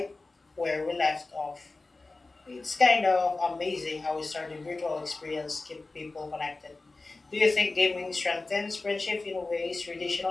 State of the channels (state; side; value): quieter; right; 3.4 dB